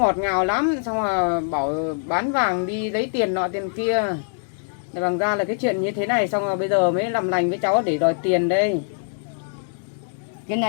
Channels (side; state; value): right; silent; digital silence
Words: ngào lắm, xong là bảo bán vàng đi lấy tiền nọ tiền kia. Để bằng ra là cái chuyện như thế này, xong rồi bây giờ mới làm lành với cháu để đòi tiền đây. Cái